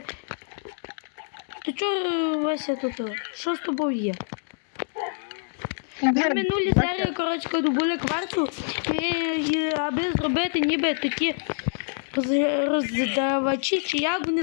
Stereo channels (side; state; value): right; silent; digital silence